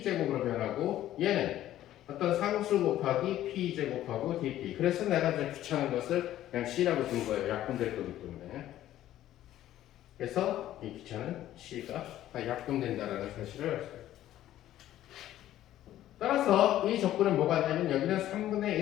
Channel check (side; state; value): right; quieter; 13.1 dB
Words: 변하고 얘는 어떤 상수 곱하기 p제곱하고 dp. 그래서 내가 이제 귀찮은 것을 그냥 c라고 둔 거예요. 약분될 거기 때문에. 그래서 이 귀찮은 c가 다 약분된다는 사실을 알 수 있어요. 따라서 이 조건은 뭐가 되냐면 여기는 3분의